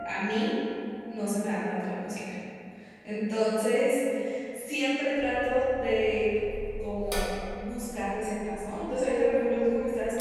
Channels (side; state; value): both; identical; correlation 1.00